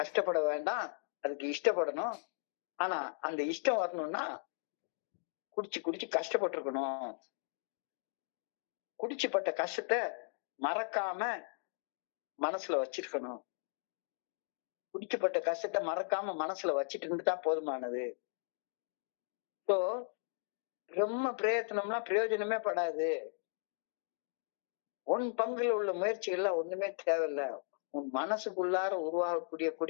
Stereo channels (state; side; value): silent; right; digital silence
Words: வேண்டாம், அதுக்கு இஷ்டப்படணும். ஆனா அந்த இஷ்டம் வரணும்னா குடிச்சு கஷ்டப்பட்டிருக்கணும். குடிச்சுப்பட்ட கஷ்டத்தை மறக்காம மனசுல வச்சிருக்கணும். குடிச்சுப்பட்ட கஷ்டத்தை மறக்காம மனசுல வச்சிட்டு இருந்துட்டா போதுமானது. ஸோ ரொம்ப பிரயத்தனம்லாம் பிரயோஜனமே படாது. உன் பங்குல உள்ள முயற்சிகள்லாம் ஒண்ணுமே தேவையில்லை. உன் மனசுக்குள்ளார உருவாகக்கூடிய